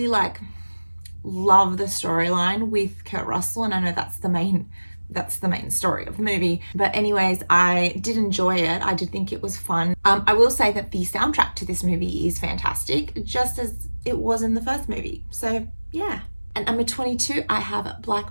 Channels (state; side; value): inverted; both; correlation -1.00